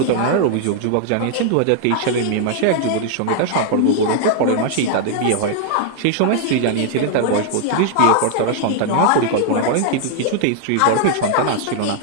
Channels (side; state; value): both; different; correlation 0.00